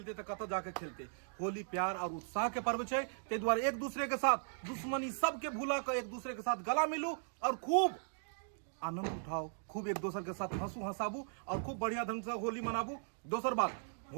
तो कतौ जाके खेलते। होली प्यार और उत्साह के पर्व छै, ते द्वारा एक दूसरे के साथ दुश्मनी सबके भूला कर एक दूसरे के साथ गला मिलू और खूब आनंद उठाओ, खूब एक दूसरे के साथ हंसू हंसाबू और खूब बढ़िया ढंग से होली मनाबू। दोसर बात,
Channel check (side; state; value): left; silent; digital silence